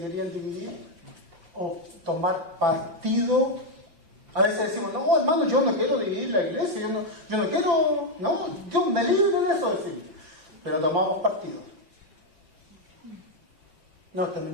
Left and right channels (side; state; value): left; late; 5.5 ms